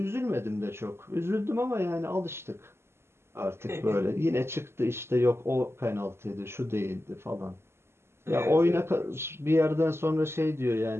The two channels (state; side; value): late; left; 0.12 ms